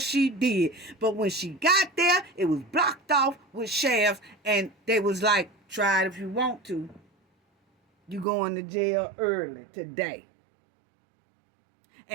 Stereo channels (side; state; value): left; drops out; at 8.2 s